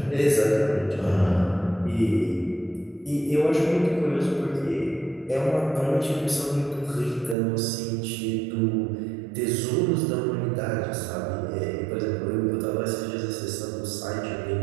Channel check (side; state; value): left; drops out; at 7.4 s